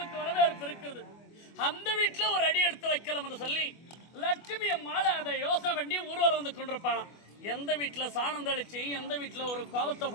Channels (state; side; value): late; right; 24 ms